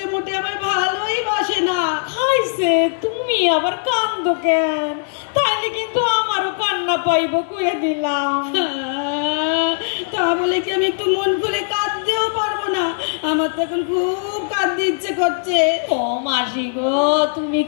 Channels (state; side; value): silent; right; digital silence